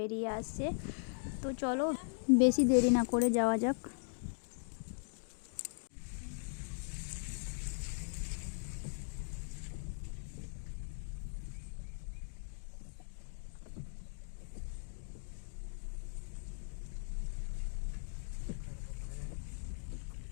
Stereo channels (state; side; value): silent; right; digital silence